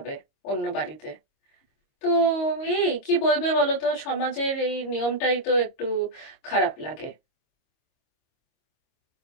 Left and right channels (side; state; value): right; late; 25 ms